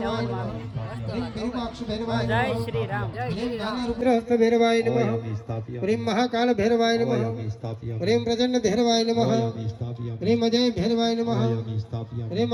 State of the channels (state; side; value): identical; both; correlation 1.00